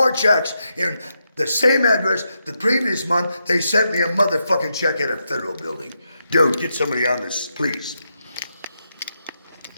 checks in the same address the previous month they sent me a motherfucking check at a federal building? Dude, get somebody on this, please.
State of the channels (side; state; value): both; inverted; correlation -0.84